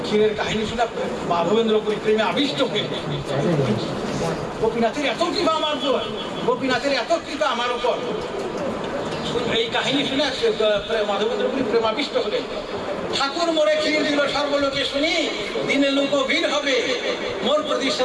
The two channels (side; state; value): both; identical; correlation 1.00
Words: ক্ষীরের কাহিনী শুনে মাধবেন্দ্রপুরী প্রেমে আবিষ্ট হয়ে, গোপীনাথের এত কৃপা আমার উপর, গোপীনাথের এত কৃপা আমার উপর। এই কাহিনী শুনে মাধবেন্দ্রপুরী প্রেমাবিষ্ট হলেন। ঠাকুর মোরে ক্ষীর দিল সর্বলোকে শুনি, দিনে লোক ভিড় হবে মোর